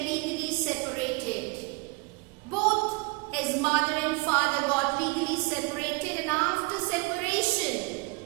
separated. Both his mother and father got legally separated, and after separation,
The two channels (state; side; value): quieter; left; 27.7 dB